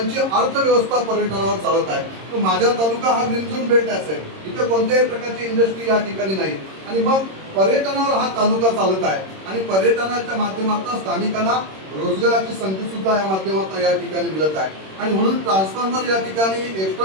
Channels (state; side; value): late; left; 26 ms